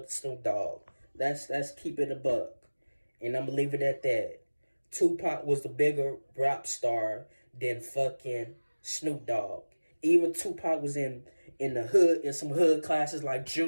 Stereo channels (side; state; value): both; inverted; correlation -1.00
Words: to Snoop Dogg. Let's keep it a buck. And I'm gonna leave it at that. Tupac was the bigger rap star than fucking Snoop Dogg. Even Tupac was in the hood, in some hood classes like